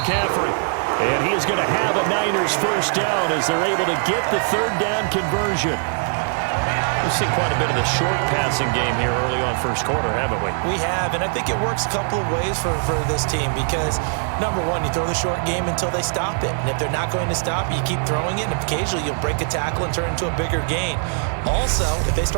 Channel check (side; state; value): left; silent; 56 dB below the other